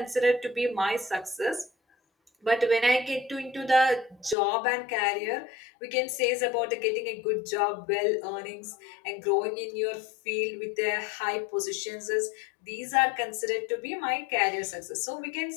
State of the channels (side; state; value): right; drops out; at 4.4 s